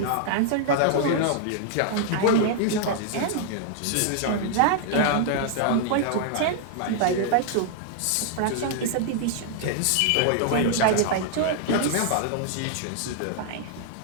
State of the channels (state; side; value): different; both; correlation -0.01